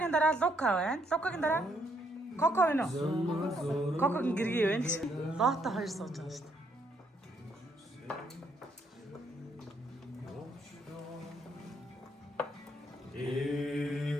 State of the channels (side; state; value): both; normal; correlation 0.72